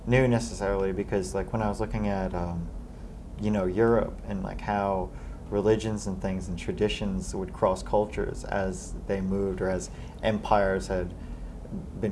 new necessarily, because like when I was looking at Europe and like how religions and things and traditions would cross cultures as they moved, or as empires had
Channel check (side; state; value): both; identical; correlation 1.00